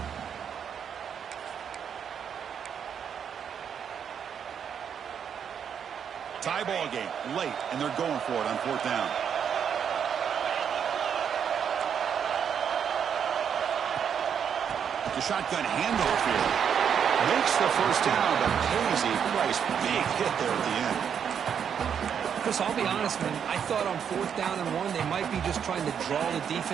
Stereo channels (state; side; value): quieter; left; 7.8 dB